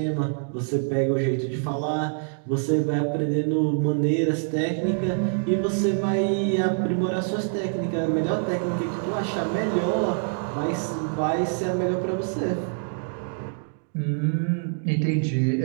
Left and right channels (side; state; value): left; silent; 62 dB below the other